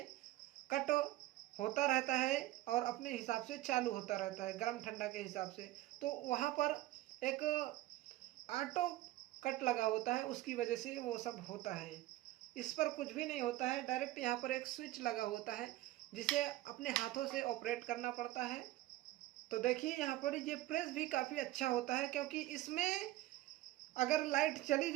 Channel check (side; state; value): left; quieter; 16.4 dB